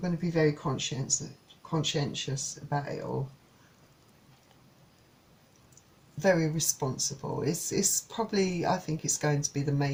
to be very conscientious about it all. Very responsible. It's probably, I think it's going to be the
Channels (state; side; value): identical; both; correlation 1.00